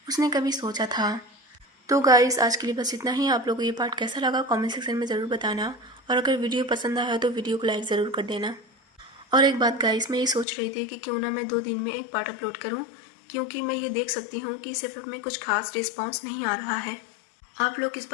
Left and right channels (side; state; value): right; drops out; at 10.5 s